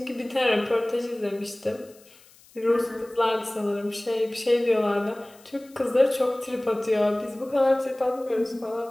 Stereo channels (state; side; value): noise; left; hiss, 26 dB below the sound